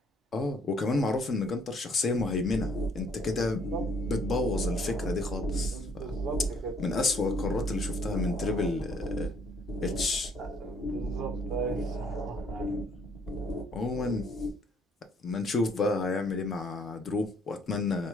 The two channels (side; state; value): both; normal; correlation 0.64